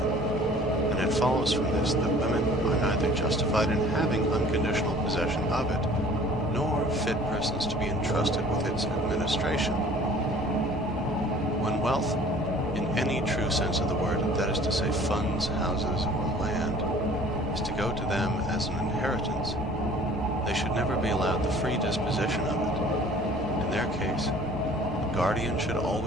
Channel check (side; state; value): both; normal; correlation 0.50